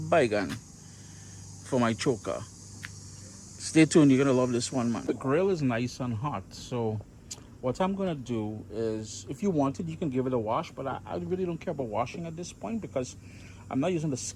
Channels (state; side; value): identical; both; correlation 1.00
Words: for my choka. Stay tuned, you're gonna love this one, man. The grill is nice and hot, so what I'm gonna do is, if you wanted, you can give it a wash, but I really don't care about washing at this point because I'm not using the